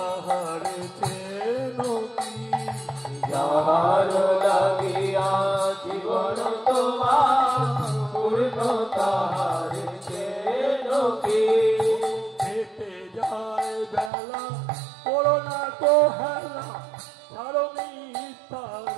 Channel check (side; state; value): left; drops out; at 14.1 s